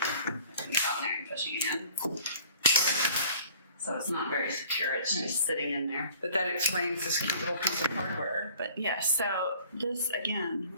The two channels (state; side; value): inverted; both; correlation -0.51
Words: it on there and pushing it in. So it's not very secure, it's just sitting in there. But that explains this cute little piece of hardware. But yeah, so this, again,